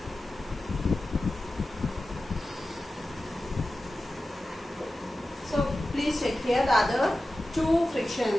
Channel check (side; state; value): both; normal; correlation 0.94